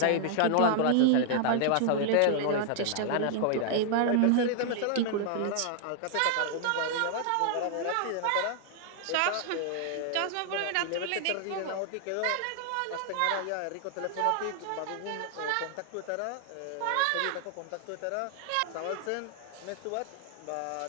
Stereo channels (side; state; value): both; different; correlation 0.00